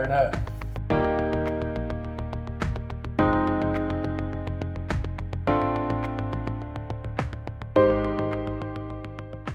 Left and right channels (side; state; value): both; identical; correlation 1.00